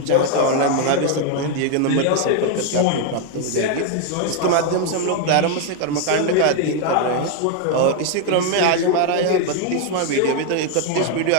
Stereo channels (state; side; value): different; both; correlation 0.01